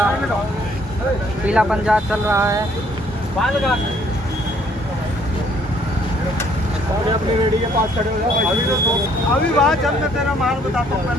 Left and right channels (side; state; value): both; normal; correlation 0.63